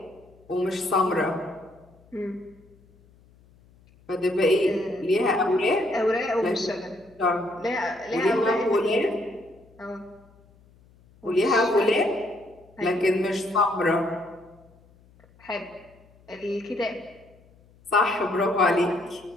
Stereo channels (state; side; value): noise; left; hum, 28 dB below the sound